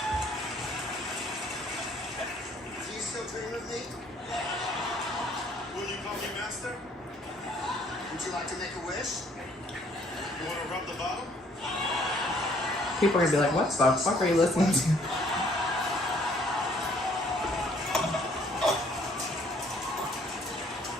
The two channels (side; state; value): both; normal; correlation 0.62